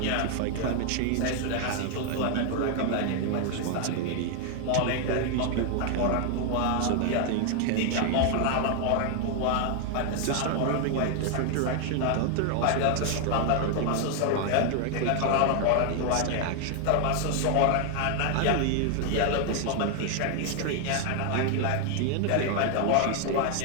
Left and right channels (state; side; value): different; both; correlation 0.00